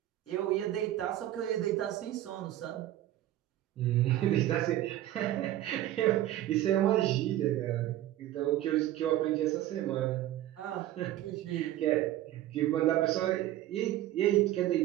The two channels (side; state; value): left; quieter; 13.7 dB